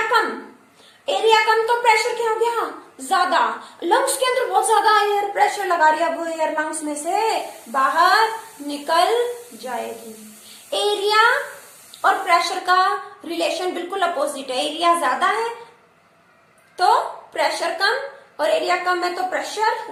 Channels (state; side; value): identical; both; correlation 1.00